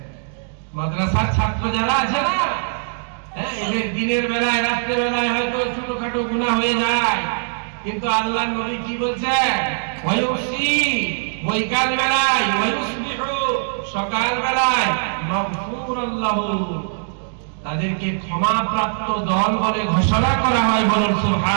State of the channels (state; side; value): silent; left; 65 dB below the other